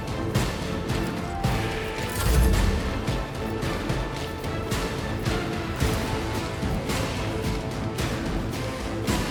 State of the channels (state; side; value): identical; both; correlation 1.00